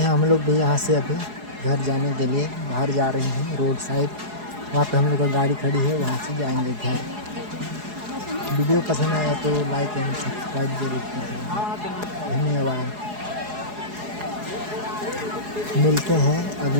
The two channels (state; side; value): late; left; 4.8 ms